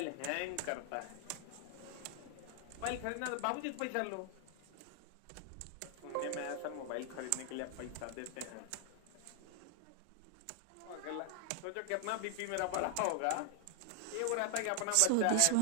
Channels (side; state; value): both; different; correlation 0.00